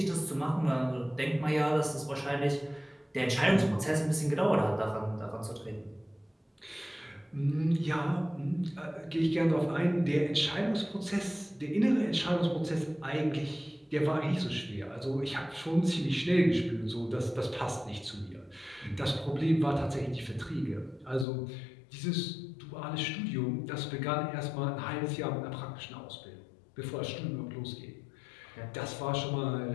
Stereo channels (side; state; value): right; drops out; at 21.2 s